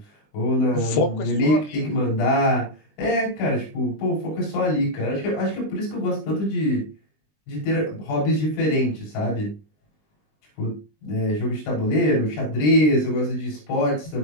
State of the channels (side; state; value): right; late; 20 ms